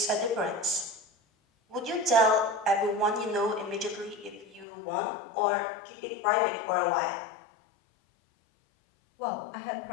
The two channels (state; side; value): drops out; right; at 4.7 s